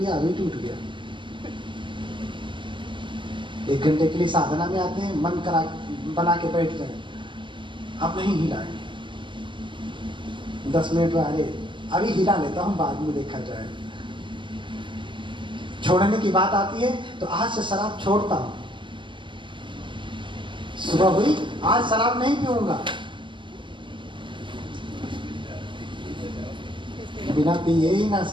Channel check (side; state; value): left; late; 0.24 ms